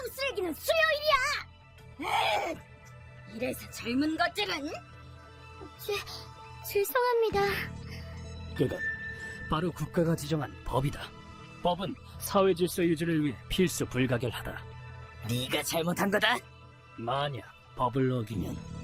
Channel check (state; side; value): identical; both; correlation 1.00